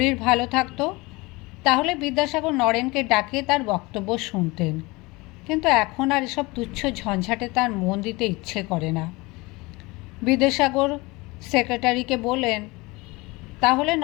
ভালো থাকতো তাহলে বিদ্যাসাগর নরেনকে ডাকিয়ে তার বক্তব্য শুনতেন, কিন্তু এখন আর এসব তুচ্ছ ঝঞ্ঝাটে তার মন দিতে ইচ্ছে করে না। বিদ্যাসাগর সেক্রেটারিকে বললেন, তাহলে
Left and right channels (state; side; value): quieter; right; 23.7 dB